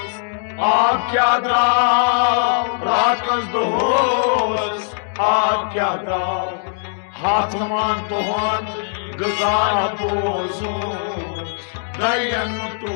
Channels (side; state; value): right; silent; digital silence